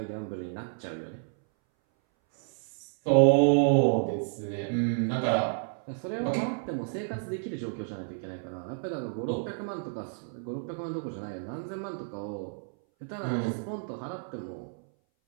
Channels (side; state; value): left; silent; 58 dB below the other